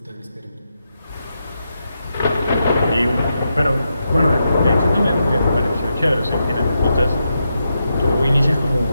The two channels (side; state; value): both; inverted; correlation -0.85